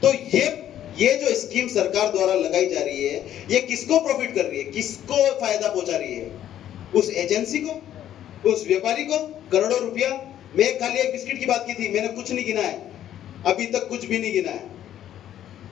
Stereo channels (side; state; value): right; quieter; 11.3 dB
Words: तो ये जो स्कीम सरकार द्वारा लगाई जा रही है, ये किसको प्रॉफिट कर रही है? किसको फायदा पहुंचा रही है? उस एजेंसी को, उस व्यापारी को करोड़ों रुपया। मैं खाली एक बिस्किट की बात की थी, मैंने कुछ नहीं गिना है, अभी तक कुछ भी नहीं गिना है।